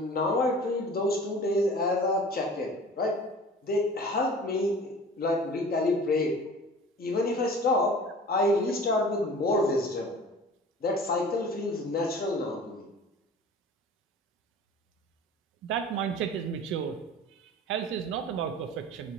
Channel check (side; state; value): both; normal; correlation 0.42